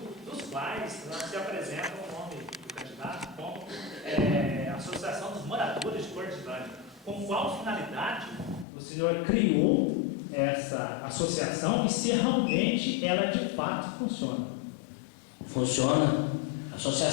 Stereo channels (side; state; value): right; drops out; at 8.7 s